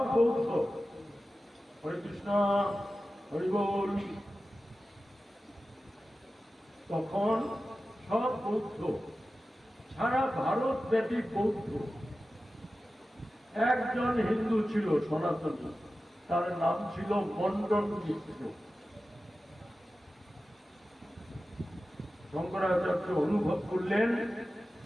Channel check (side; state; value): both; normal; correlation 0.94